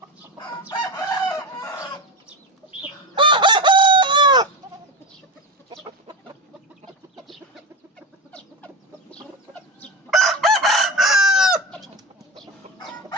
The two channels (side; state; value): both; normal; correlation 0.20